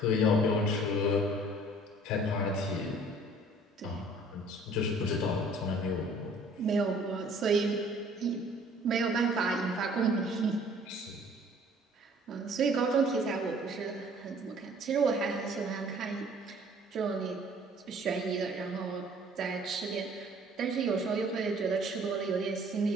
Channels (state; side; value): normal; both; correlation 0.54